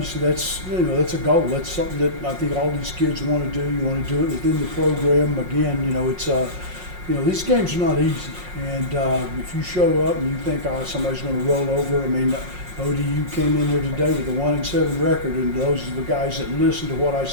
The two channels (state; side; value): late; left; 5.5 ms